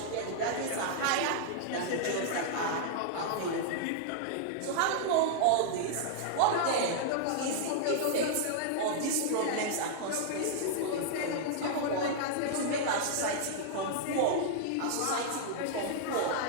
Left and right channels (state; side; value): different; both; correlation -0.01